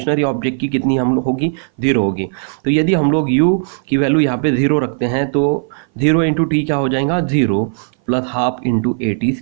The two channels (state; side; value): silent; left; 59 dB below the other